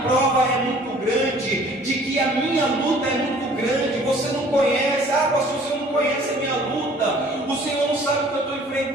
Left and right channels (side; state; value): both; normal; correlation 0.53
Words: prova é muito grande, de que a minha luta é muito grande. Você não conhece, pastor, você não conhece a minha luta, o Senhor não sabe o que eu estou